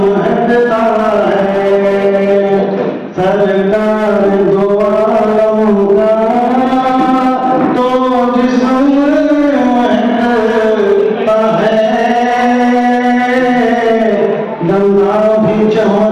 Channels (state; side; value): identical; both; correlation 1.00